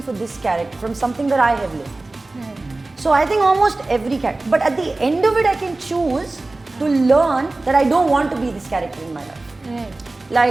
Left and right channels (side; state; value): left; quieter; 3.1 dB